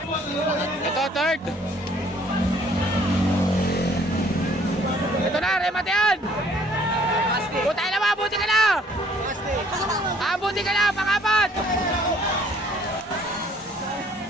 Ito, third. Ito na, remate yan. buti ka na! Buti ka na, pang-apat!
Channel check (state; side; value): normal; both; correlation 0.59